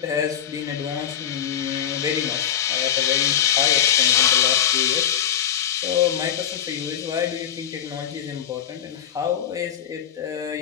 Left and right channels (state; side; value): quieter; right; 9.6 dB